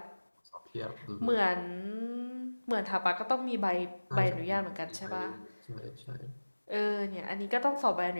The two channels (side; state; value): both; inverted; correlation -1.00